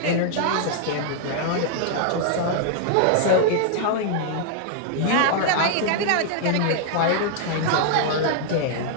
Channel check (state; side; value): different; both; correlation -0.01